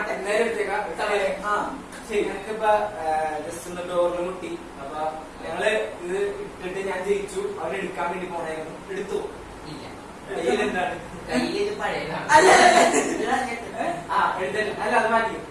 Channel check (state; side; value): identical; both; correlation 1.00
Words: നേരെ എടുത്തേക്കാം. ശരി, ഞങ്ങൾക്കിപ്പ ജസ്റ്റ് ഒന്ന് ഡോറിൽ മുട്ടി. അപ്പൊ ഞങ്ങള് ഇത് ഇട്ടിട്ട് ഞാൻ ജയിച്ചു. അവൻ എടുക്കാൻ വേണ്ടി പോണായിരുന്നു. എടുത്തു. ഇല്ല, കയ്യിലെന്താണ്? കയ്യിൽ ഇത് പഴയതാണ്. എടുത്തില്ല. അല്ല, അത് മാറ്റി.